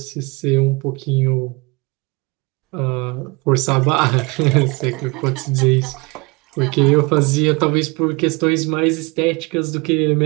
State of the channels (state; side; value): quieter; left; 27.0 dB